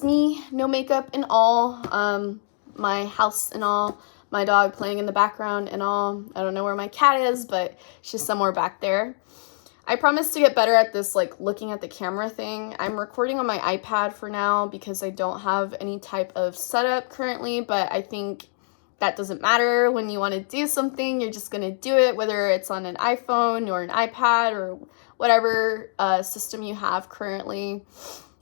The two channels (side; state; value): right; silent; digital silence